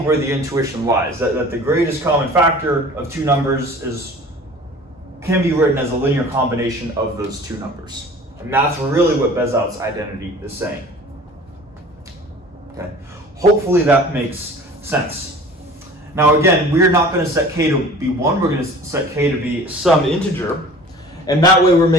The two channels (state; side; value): normal; both; correlation 0.44